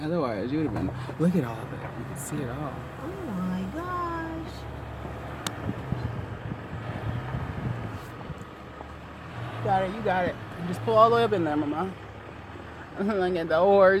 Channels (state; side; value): identical; both; correlation 1.00